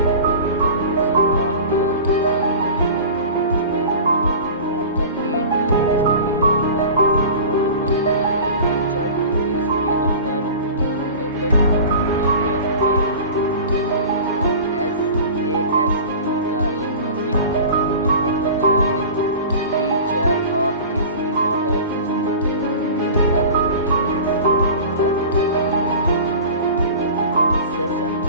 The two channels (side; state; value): both; inverted; correlation -0.37